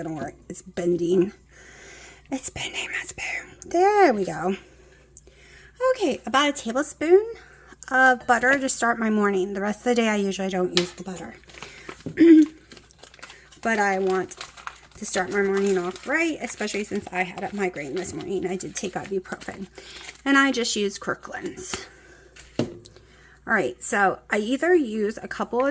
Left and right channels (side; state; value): both; identical; correlation 1.00